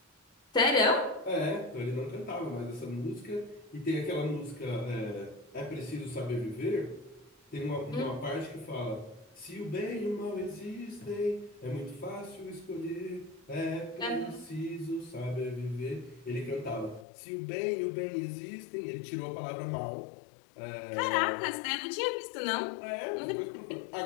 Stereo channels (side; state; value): right; drops out; at 17.1 s